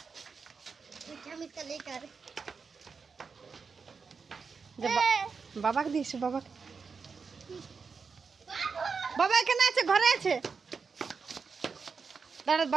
हम इसका लेकर বাবা দিয়েছে বাবা বাবা এখানে আছে ঘরে আছে দাঁড়া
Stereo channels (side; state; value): left; quieter; 5.3 dB